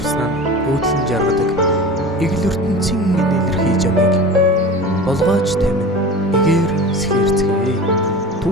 өөдлөн жаргадаг игэл ертөнцийн илэрхий жамыг болгооч тамин эгээр сэхэрцгээ.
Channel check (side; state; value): both; normal; correlation 0.34